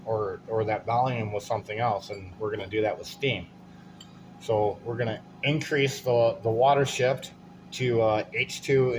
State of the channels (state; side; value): identical; both; correlation 1.00